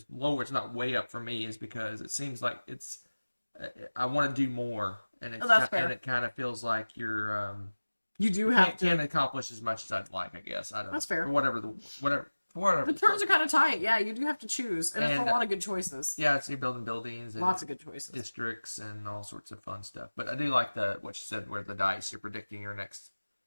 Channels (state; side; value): inverted; both; correlation -1.00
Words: lower. It's not way up for me, is because it seems like it's. I want to do more, and it kind of feels like you're. You do have to can't accomplish as much as I'd like. I guess I don't. That's fair. For whatever. whatever. The turns are kind of tight. Yeah, you do have to choose, and it's a And, lot of good choices. Yeah, so you're building buildings and Lots of good choices. districts and all sorts of fun stuff. But I do like what you said, where the dice, you're predicting your next.